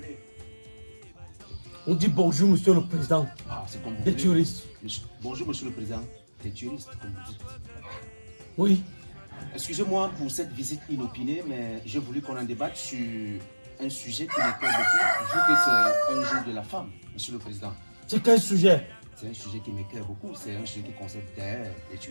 On dit bonjour, monsieur le président. Ah, c'est comme vous Des voulez. tueristes. Bonjour, monsieur le président. Des tueristes, comme vous dites. Oui. Excusez-moi pour cette visite inopinée, mais j'ai voulu qu'on en débatte sur un sujet qui me plaît beaucoup, vu que c'est un jour de la femme, monsieur le président. C'est quel sujet? C'est un sujet qui m'éclaire beaucoup, c'est un sujet qui concerne les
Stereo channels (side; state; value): both; inverted; correlation -1.00